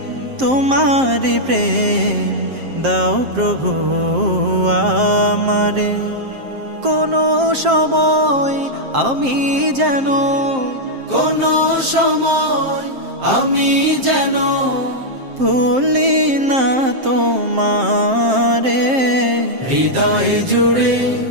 তোমারি প্রেম দাও প্রভু আমারে। কোনো সময় আমি যেন ভুলি না তোমারে। হৃদয় জুড়ে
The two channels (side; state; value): left; late; 7.6 ms